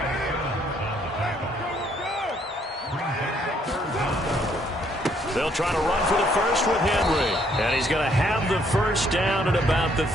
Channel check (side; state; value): both; normal; correlation 0.67